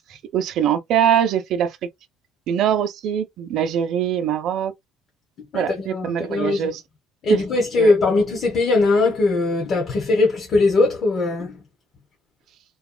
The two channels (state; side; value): normal; both; correlation 0.62